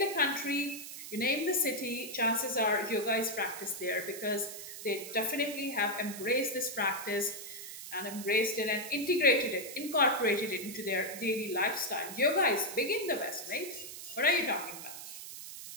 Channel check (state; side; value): noise; right; hiss, 11 dB below the sound